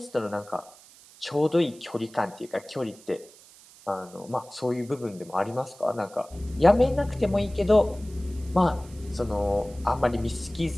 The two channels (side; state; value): right; noise; hiss, 23 dB below the sound